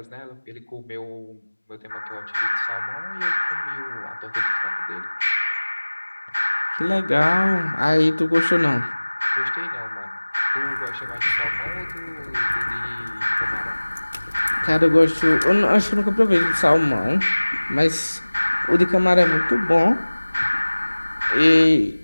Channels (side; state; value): both; inverted; correlation -1.00